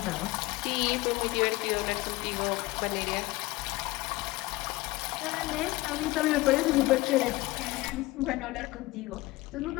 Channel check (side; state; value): right; quieter; 20.3 dB